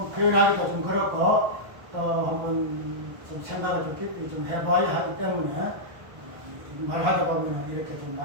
표현하기도 좀 그렇고 한번 좀 생각을 좀 깊이 좀 해봐야 하기 때문에 말하다 보면 이렇게 좀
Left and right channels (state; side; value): late; left; 1.1 ms